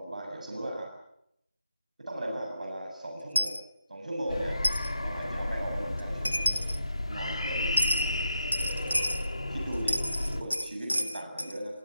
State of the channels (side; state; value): both; inverted; correlation -0.87